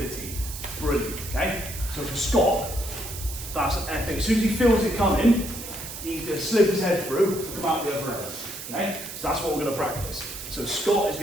Brilliant, okay? So for Scott, that's epic. As soon as he feels it coming, he's going to slip his head through to come out the other end. Okay? So that's what we're going to practice. So Scott is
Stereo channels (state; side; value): noise; right; hiss, 10 dB below the sound